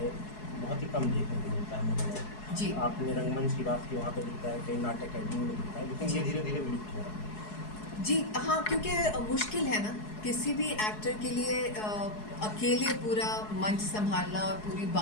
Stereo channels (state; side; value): late; right; 4.7 ms